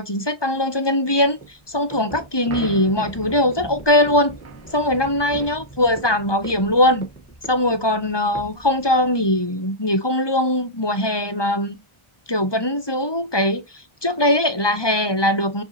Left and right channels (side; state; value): right; late; 1.2 ms